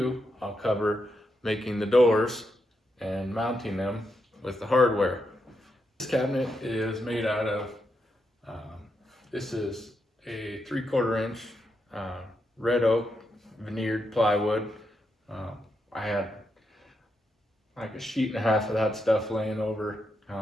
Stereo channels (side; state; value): both; normal; correlation 0.83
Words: I'll cover making the doors and mounting them with the hardware. This cabinet is made out of, this is a 3/4 inch red oak veneered plywood. I had like a sheet and a half of that stuff laying over,